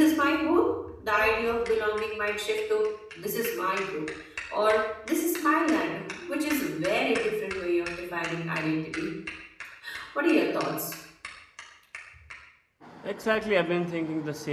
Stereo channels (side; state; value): both; identical; correlation 1.00